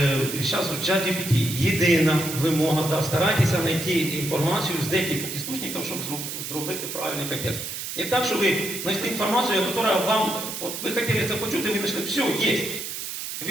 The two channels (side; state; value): right; noise; hiss, 6 dB below the sound